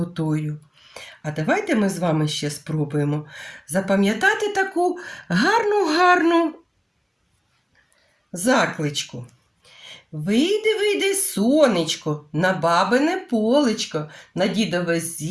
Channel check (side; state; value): both; identical; correlation 1.00